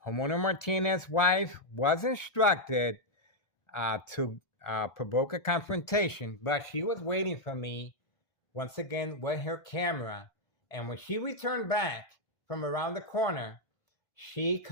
homeowner Martinez's wife was instructed to provoke a confrontation, but she was waiting for me, once again, with her camera. And when she returned back from around the corner, she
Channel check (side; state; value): right; late; 1.4 ms